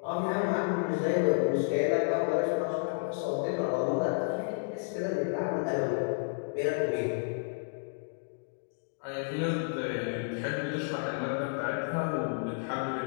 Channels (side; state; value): right; silent; digital silence